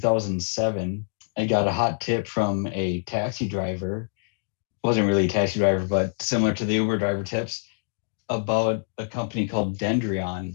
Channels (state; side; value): silent; right; digital silence